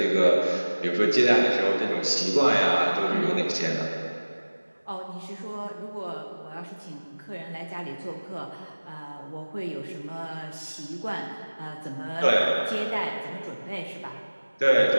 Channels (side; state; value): both; inverted; correlation -1.00